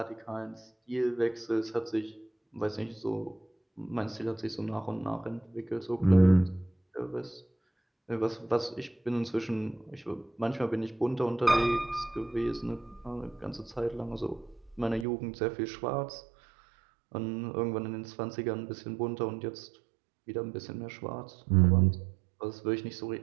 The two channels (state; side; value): drops out; left; at 15.1 s